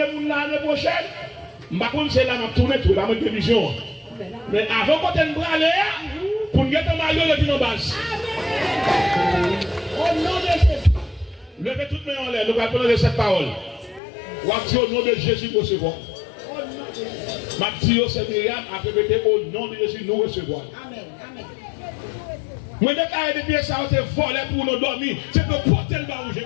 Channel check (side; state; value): right; drops out; at 14.0 s